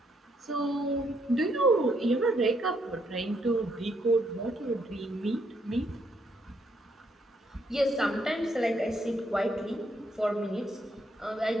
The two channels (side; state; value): both; normal; correlation 0.73